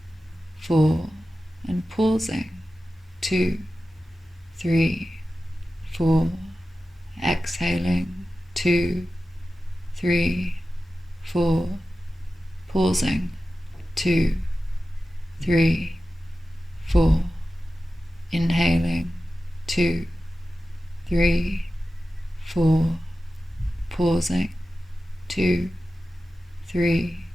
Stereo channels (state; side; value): normal; both; correlation 0.94